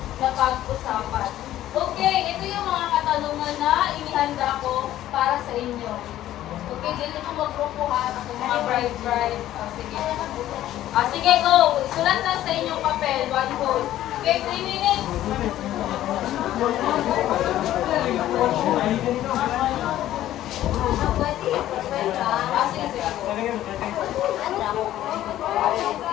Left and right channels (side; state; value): right; quieter; 13.3 dB